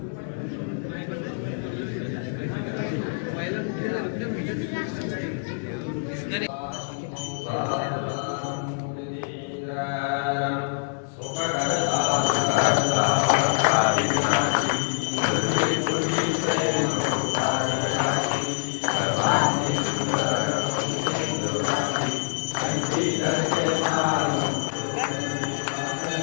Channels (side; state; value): right; silent; digital silence